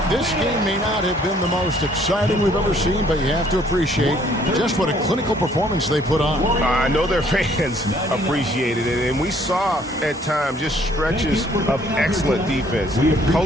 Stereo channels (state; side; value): normal; both; correlation 0.62